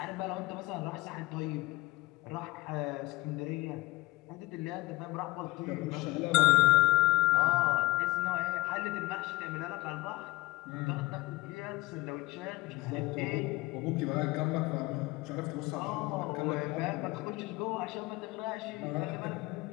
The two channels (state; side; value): quieter; right; 19.7 dB